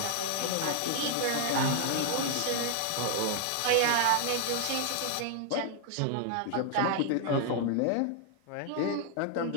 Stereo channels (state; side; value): different; both; correlation 0.00